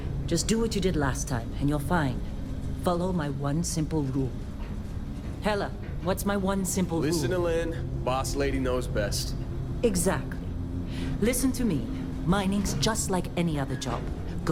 Just do what you did last time, and you're fine. Follow my one simple rule. Hella, what's my one simple rule? Listen to Lynn. Boss lady knows best. Exactly. Listen to me. Mining's just like any other job.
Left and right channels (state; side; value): identical; both; correlation 1.00